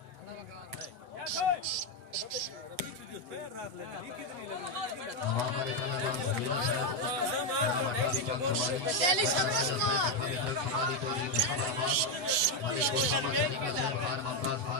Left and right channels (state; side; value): late; left; 8.2 ms